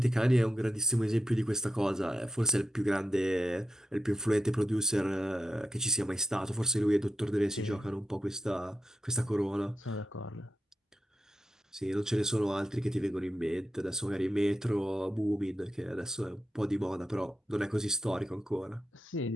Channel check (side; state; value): both; normal; correlation 0.89